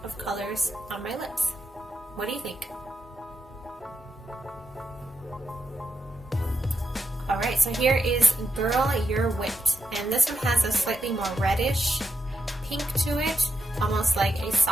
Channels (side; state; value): both; normal; correlation 0.85